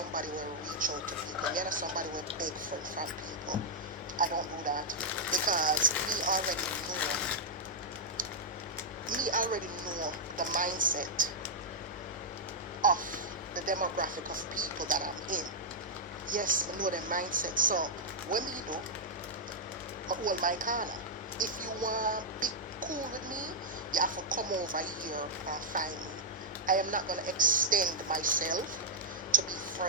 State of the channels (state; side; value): normal; both; correlation -0.07